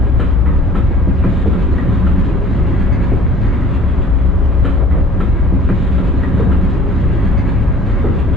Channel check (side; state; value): both; normal; correlation 0.49